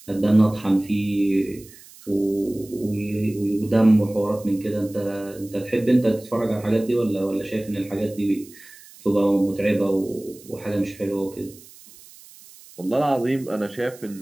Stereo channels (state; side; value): noise; right; hiss, 22 dB below the sound